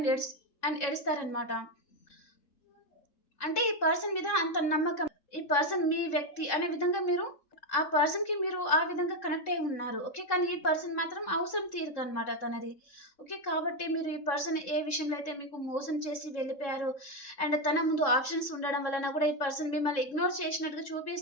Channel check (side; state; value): right; late; 3.6 ms